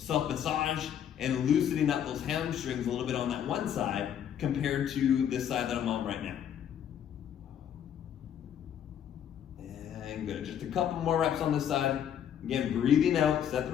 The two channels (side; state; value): right; quieter; 9.3 dB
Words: and loosening up those hamstrings a little bit on that one side compared to this side that I'm on right now. And good. Just a couple more reps on this side. Again, breathing out, set the